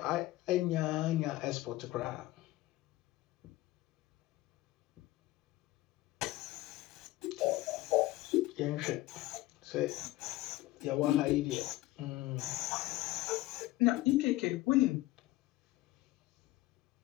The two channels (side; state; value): right; quieter; 17.8 dB